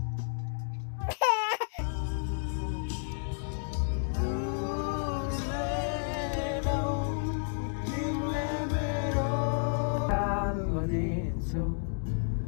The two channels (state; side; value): silent; right; digital silence